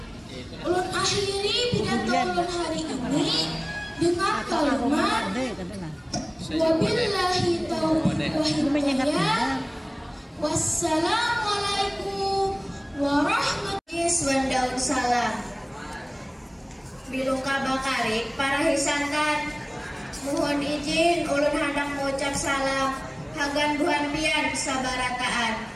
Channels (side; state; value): both; identical; correlation 1.00